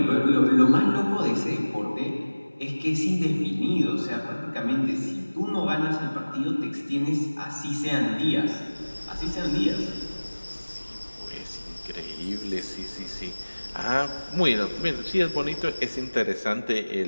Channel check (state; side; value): inverted; both; correlation -1.00